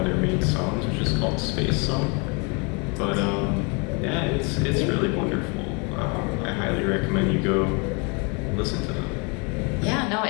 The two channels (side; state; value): right; quieter; 32.3 dB